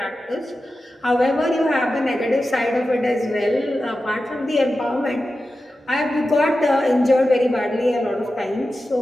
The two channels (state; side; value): normal; both; correlation 0.92